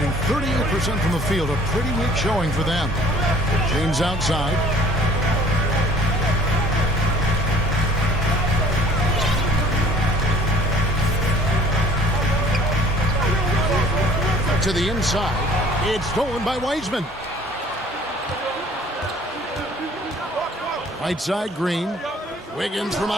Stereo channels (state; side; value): normal; both; correlation 0.53